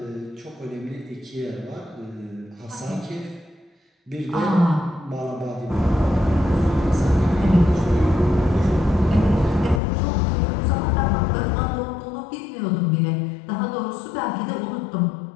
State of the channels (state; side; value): drops out; right; at 9.8 s